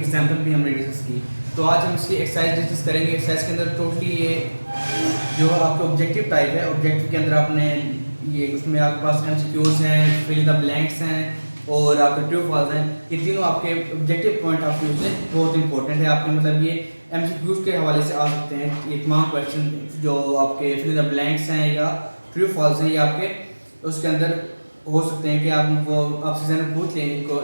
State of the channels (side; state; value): both; inverted; correlation -1.00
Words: एग्जाम्पल भी हमने डिस्कस की। तो आज हम इसकी एक्सरसाइज डिस्कस करेंगे। एक्सरसाइज के अंदर टोटली ये जो आपका ऑब्जेक्टिव टाइप है, ऑब्जेक्टिव के अंदर आपने ये उसमें आपके पास MCQs हैं, फिल इन द ब्लैंक्स हैं और आपके ट्रू फॉल्स हैं। ये तीनों आपके ऑब्जेक्टिव पॉइंट ऑफ व्यू से बहुत इंपॉर्टेंट है। आपके मतलब ये MCQs के हवाले से आ सकते हैं। ये तमाम क्वेश्चन जो आपके फिल इन द ब्लैंक्स हैं या ट्रू फॉल्स हैं, ये आपके उसके अंदर हो सकते हैं कि आप वो आपसे ज़रा पूछ लें इनको